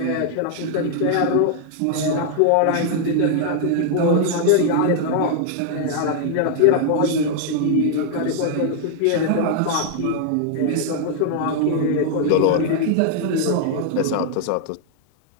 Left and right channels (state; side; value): different; both; correlation 0.00